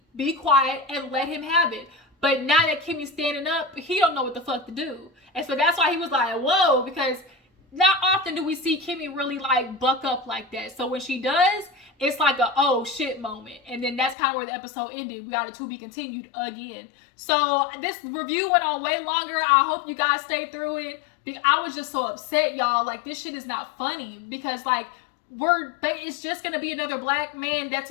be quiet and let him have it. But now that Kimmy's standing up, he don't know what the fuck to do. And so that's why he was like, whoa, because not often do we see Kimmi really like buck up like that. So when she does, it's like a oh shit moment. And then that's kind of where the episode ended. We got a to be continued again. So this review went on way longer. I hope you guys stayed through it. I was just so upset, y'all. Like, this shit is not funny because like it's just gonna be another black man that's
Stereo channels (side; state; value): right; drops out; at 14.2 s